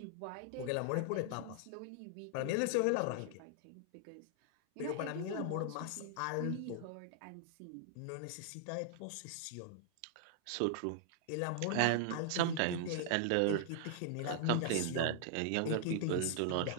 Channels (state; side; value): different; both; correlation -0.01